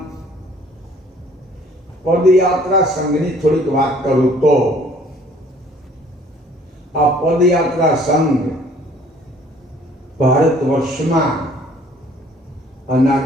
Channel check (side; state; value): both; normal; correlation 0.56